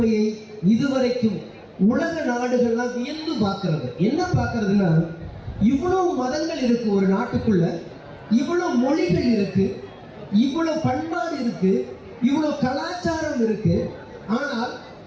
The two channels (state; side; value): identical; both; correlation 1.00